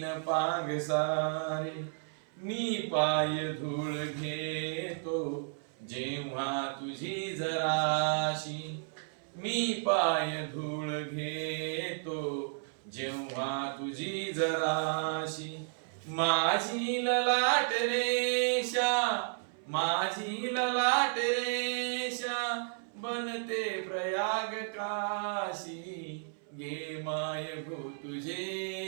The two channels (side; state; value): left; silent; 56 dB below the other